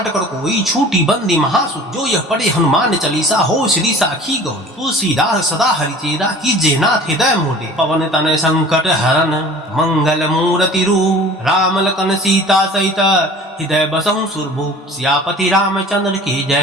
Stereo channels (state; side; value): normal; both; correlation 0.44